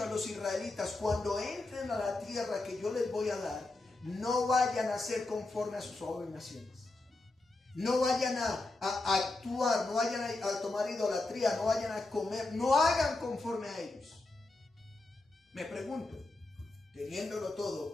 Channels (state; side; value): quieter; right; 3.1 dB